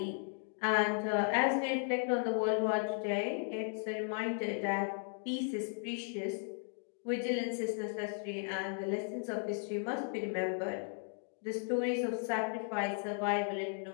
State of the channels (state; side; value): silent; right; 54 dB below the other